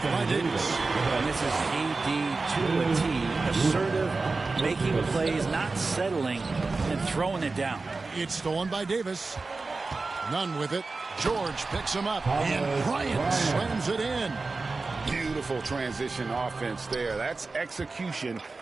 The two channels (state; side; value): quieter; left; 3.8 dB